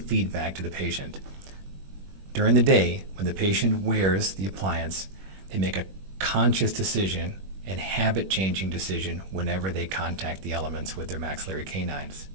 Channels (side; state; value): left; late; 21 ms